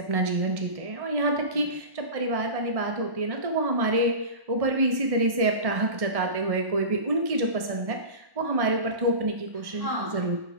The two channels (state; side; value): late; left; 1.1 ms